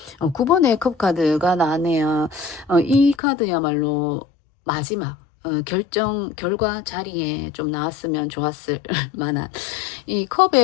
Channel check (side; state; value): right; drops out; at 3.2 s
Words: 9번의 컵 카드가 나왔네요. 이 카드야말로 마지막 결과 자리에 좀 나왔으면 좋았을 만한 이